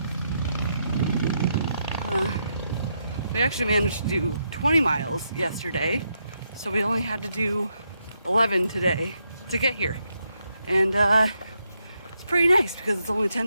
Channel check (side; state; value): both; inverted; correlation -0.80